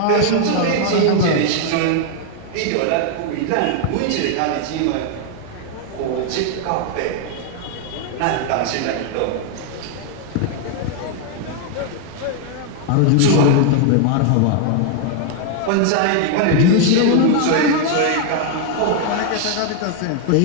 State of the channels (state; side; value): different; both; correlation 0.00